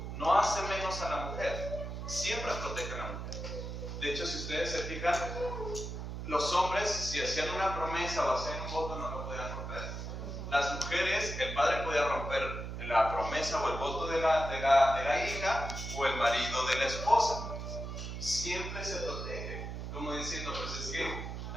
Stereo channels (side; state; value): right; noise; hum, 6 dB below the sound